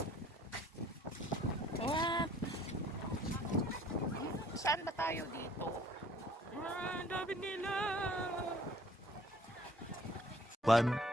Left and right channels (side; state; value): both; normal; correlation 0.56